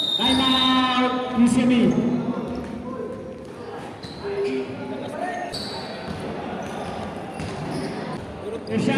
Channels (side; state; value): both; identical; correlation 1.00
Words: Time out. UCME.